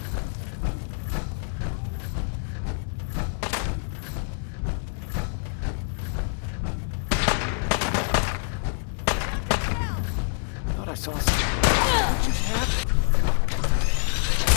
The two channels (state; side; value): silent; right; digital silence